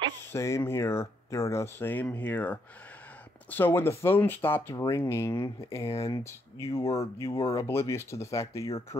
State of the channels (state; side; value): normal; both; correlation 0.75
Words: Same here, Derna. Same here. So when the phone stopped ringing and you were oblivious to the fact that your